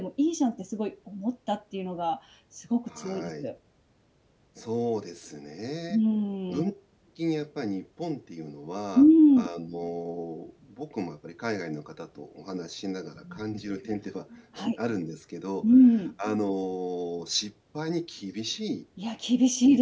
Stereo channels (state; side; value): identical; both; correlation 1.00